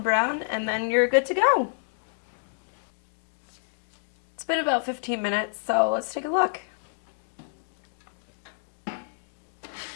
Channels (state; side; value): silent; right; digital silence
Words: and then you're good to go. It's been about 15 minutes, so let's take a look.